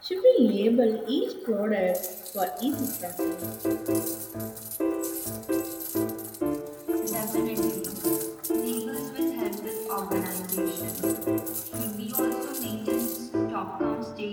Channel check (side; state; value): both; identical; correlation 1.00